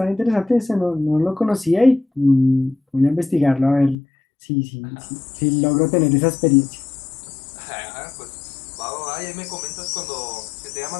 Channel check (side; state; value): right; drops out; at 4.0 s